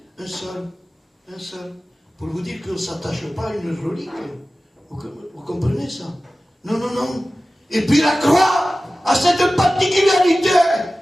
Un seul. Pour vous dire qu'on ne s'attache pas à une relique. Vous comprenez ça? Non, non, non. Et puis la croix a cette particularité.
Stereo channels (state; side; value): normal; both; correlation 0.96